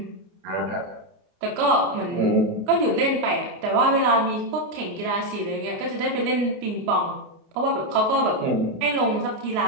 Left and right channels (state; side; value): late; left; 28 ms